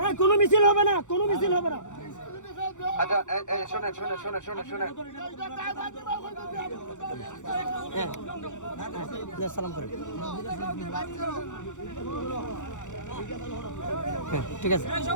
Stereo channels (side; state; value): right; late; 0.85 ms